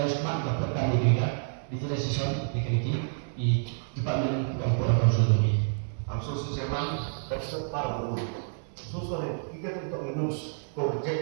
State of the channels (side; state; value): left; silent; digital silence